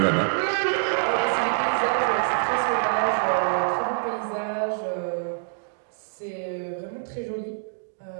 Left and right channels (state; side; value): silent; left; digital silence